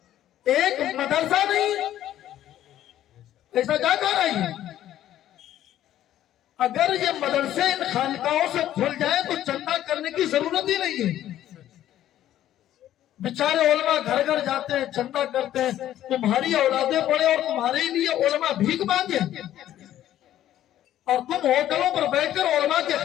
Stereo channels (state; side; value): quieter; right; 12.4 dB